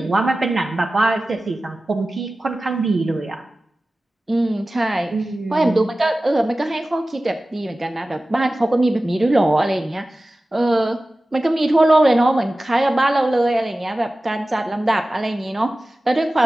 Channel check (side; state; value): both; normal; correlation 0.96